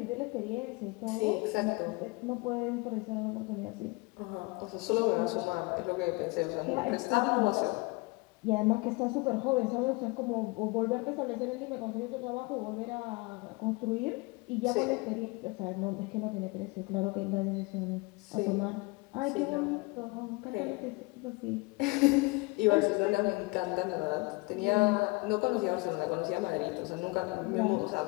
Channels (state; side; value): quieter; right; 26.3 dB